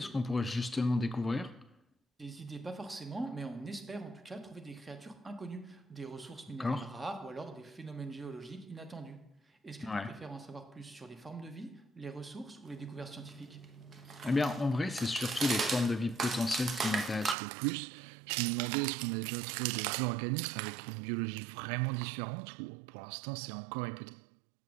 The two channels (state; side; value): drops out; left; at 17.4 s